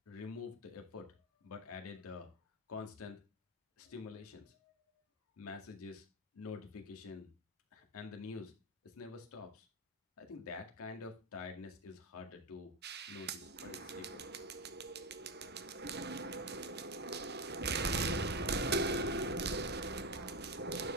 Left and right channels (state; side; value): normal; both; correlation 0.14